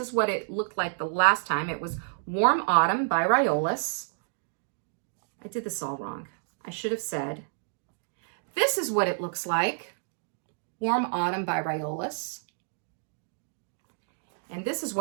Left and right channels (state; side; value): silent; left; digital silence